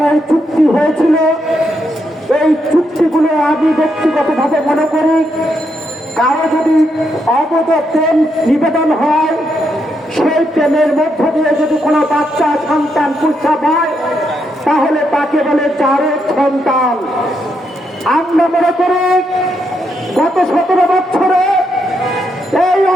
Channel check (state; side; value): normal; both; correlation 0.79